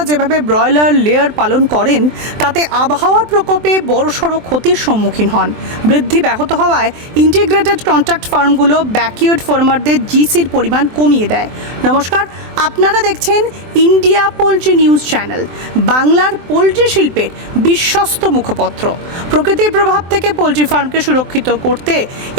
যেভাবে ব্রয়লার লেয়ার পালন করেন তাতে আবহাওয়ার প্রকোপে বড়সড় ক্ষতির সম্মুখীন হন। বৃদ্ধি ব্যাহত হওয়ায় ইন্টিগ্রেটেড কন্ট্রাক্ট ফার্মগুলো ব্যাকইয়ার্ড ফার্মারদের জিসির পরিমাণ কমিয়ে দেয়। নমস্কার, আপনারা দেখছেন ইন্ডিয়া পোলট্রি নিউজ চ্যানেল, বাংলার পোলট্রি শিল্পের বিশ্বস্ত মুখপত্র। প্রকৃতির প্রভাব থেকে পোলট্রি ফার্মকে সুরক্ষিত করতে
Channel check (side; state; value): left; late; 23 ms